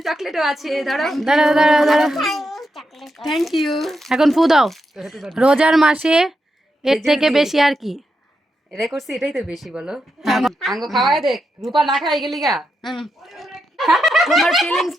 চকলেটও আছে, ধরো। দাঁড়াও দাঁড়াও দাঁড়াও, থ্যাংক ইউ। এখন ফু দাও। রোজার মাসে এর থেকে বেশি আর কি? এটাই করছি, এটাই তো বেশি বলো। আঙ্গ খাওয়াই দেখ, রূপা না খাই গেলি গা। তোমার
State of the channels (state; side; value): normal; both; correlation 0.85